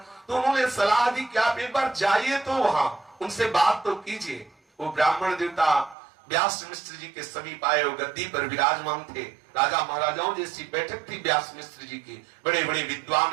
तो उन्होंने सलाह दी कि आप एक बार जाइए तो वहां उनसे बात तो कीजिए। वो ब्राह्मण देवता व्यास मिश्र जी के समीप आए, वो गद्दी पर विराजमान थे। राजा महाराजाओं जैसी बैठक थी व्यास मिश्र जी की। बड़े बड़े विद्वान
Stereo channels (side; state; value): left; drops out; at 6.0 s